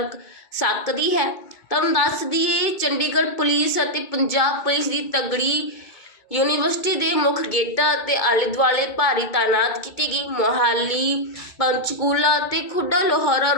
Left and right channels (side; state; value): right; late; 2.3 ms